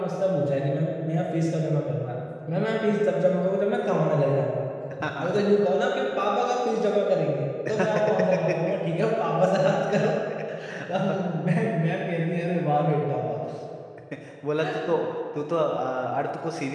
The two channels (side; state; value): both; identical; correlation 1.00